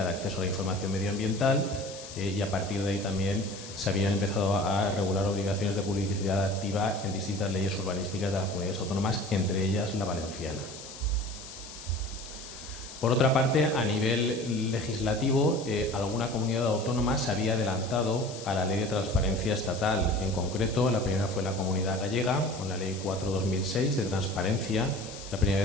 de acceso a la información medioambiental y a partir de ahí también se habían empezado a regular obligaciones de publicidad activa en distintas leyes urbanísticas de las comunidades autónomas, entre ellas la valenciana. Por otra parte, a nivel legislativo, alguna comunidad autónoma se había adelantado a la Ley de Transparencia Estatal. En concreto, la primera fue la Comunidad Gallega, con la Ley 4/2006 de transparencia. La primera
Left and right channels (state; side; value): noise; left; hiss, 14 dB below the sound